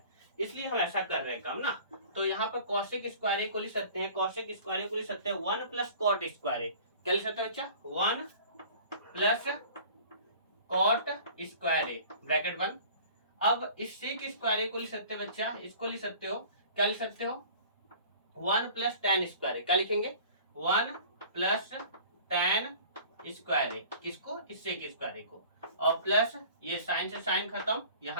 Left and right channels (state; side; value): inverted; both; correlation -0.45